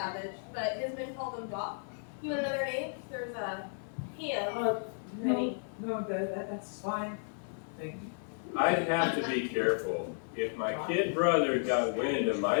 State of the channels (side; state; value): right; silent; digital silence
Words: but his men called him Doc. You want another name? There's him. No, that's fine. Thank you. I'd have to be careful. If my kid brother got wind of